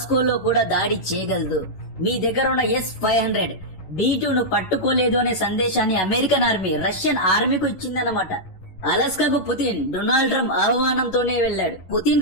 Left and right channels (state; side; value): late; right; 11 ms